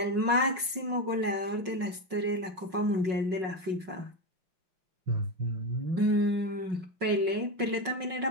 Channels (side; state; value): left; late; 5.5 ms